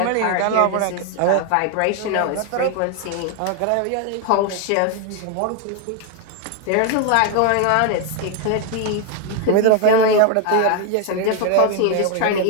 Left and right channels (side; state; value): both; different; correlation 0.01